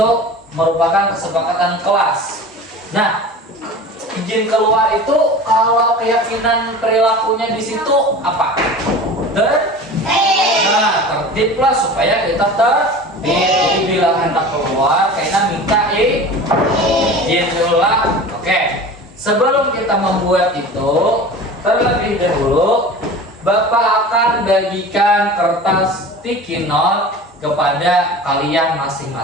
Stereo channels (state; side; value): normal; both; correlation 0.36